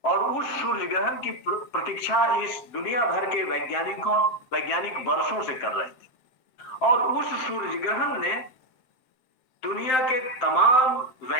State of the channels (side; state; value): right; late; 7.7 ms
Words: और उस सूर्य ग्रहण की प्रतीक्षा इस दुनिया भर के वैज्ञानिक वर्षों से कर रहे थे और उस सूर्य ग्रहण ने दुनिया के तमाम